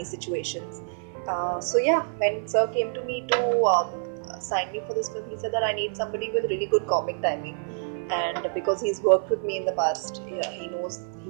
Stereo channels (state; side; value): silent; left; 56 dB below the other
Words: situations. So yeah, when Sir came to me to sign me for this film, he said that I need somebody with really good comic timing, and because he's worked with me in the past, yeah, he